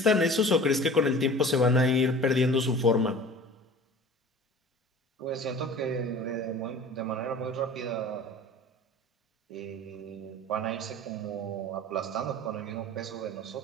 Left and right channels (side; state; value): both; normal; correlation 0.42